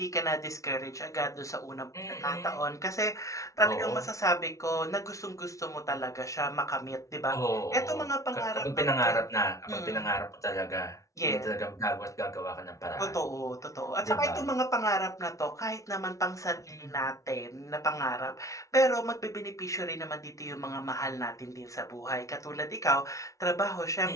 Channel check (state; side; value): late; right; 0.15 ms